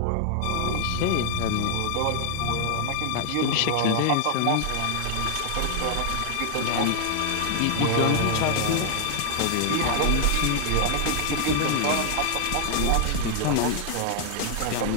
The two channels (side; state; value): both; different; correlation 0.00